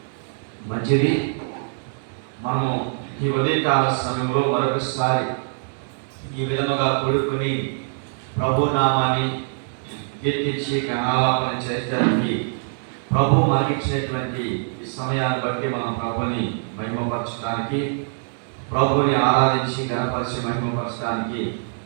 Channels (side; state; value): left; silent; 63 dB below the other